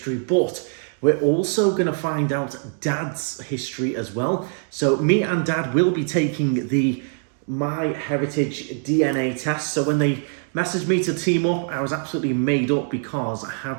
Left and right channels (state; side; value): silent; left; 62 dB below the other